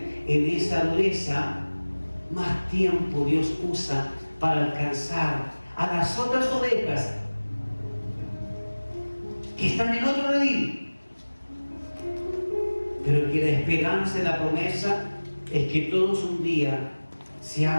en esa dureza, más tiempo Dios usa para alcanzar a las otras ovejas que están en otro redil. Pero que la esperanza y la promesa es que todos un día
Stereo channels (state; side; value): inverted; both; correlation -1.00